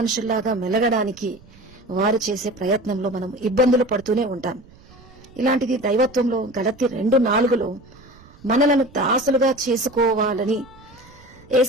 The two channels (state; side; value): noise; right; rumble, 24 dB below the sound